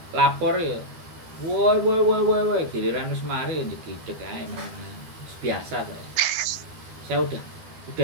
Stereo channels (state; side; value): late; left; 12 ms